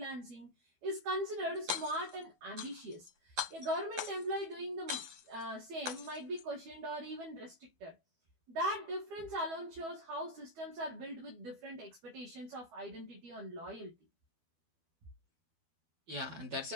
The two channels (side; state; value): left; late; 12 ms